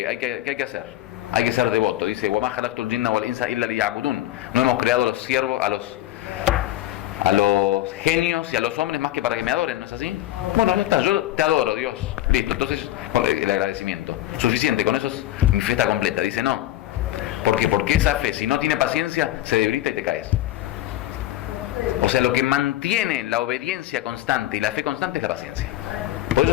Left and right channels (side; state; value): right; quieter; 14.4 dB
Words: que hacer? Hay que ser devoto. Dice, وَمَا خَلَقْتُ الْجِنَّ وَالْإِنسَ إِلَّا لِيَعْبُدُونَ. No hemos creado a los siervos, a los genios y a los hombres más que para que me adoren, ¿no es así? Bueno, ya está, yo te adoro, Dios. Listo, entonces el agradecimiento. Suficiente, con eso es mi fe está completa. Dice, no. ¿Por qué? Porque esa fe, si no tiene paciencia, se debilita y te caes. O sea, lo que mantiene la obediencia constante y la fe constante es la paciencia. Por eso